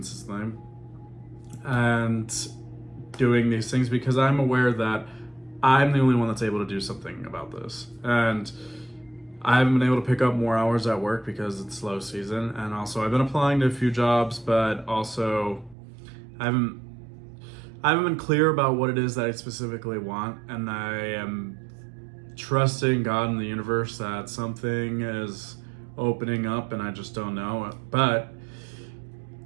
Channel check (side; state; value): left; drops out; at 15.8 s